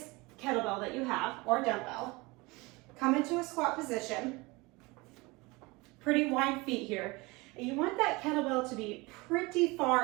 kettlebell that you have or dumbbell. Come into a squat position, pretty wide feet here. And you want that kettlebell to be pretty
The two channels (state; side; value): quieter; left; 24.2 dB